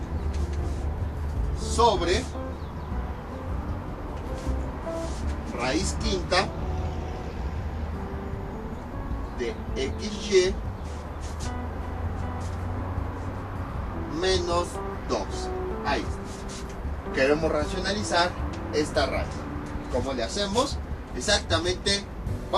sobre raíz quinta de xy menos 2. Ahí está. Queremos racionalizar esta raíz. ¿Cómo le hacemos? Exactamente,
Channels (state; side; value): identical; both; correlation 1.00